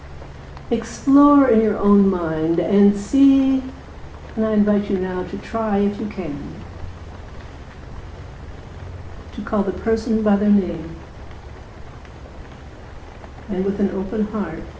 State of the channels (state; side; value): identical; both; correlation 1.00